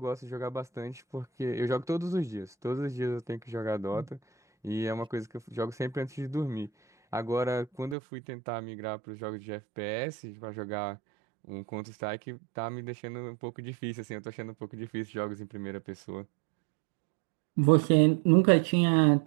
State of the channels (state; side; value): drops out; left; at 8.0 s